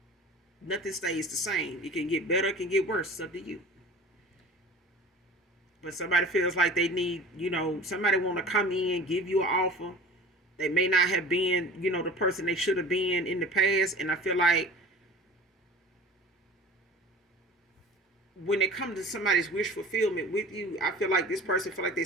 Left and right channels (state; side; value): normal; both; correlation 0.40